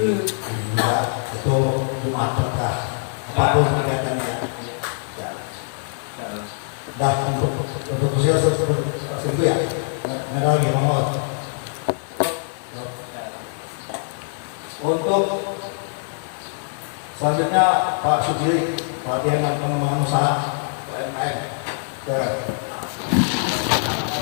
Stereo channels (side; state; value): right; silent; 63 dB below the other